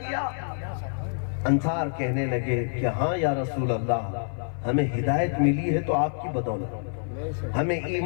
انصار کہنے لگے کہ ہاں یا رسول اللہ، ہمیں ہدایت ملی ہے تو آپ کی بدولت، ہمیں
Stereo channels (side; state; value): right; silent; 55 dB below the other